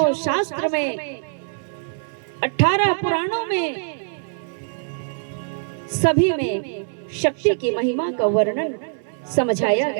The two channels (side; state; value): left; silent; 61 dB below the other